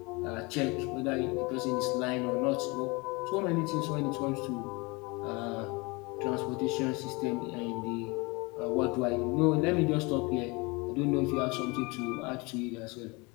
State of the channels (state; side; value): quieter; right; 26.8 dB